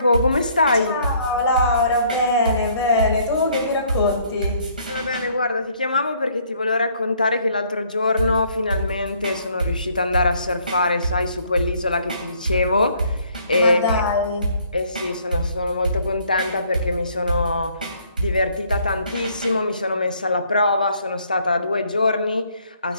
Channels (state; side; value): inverted; both; correlation -0.63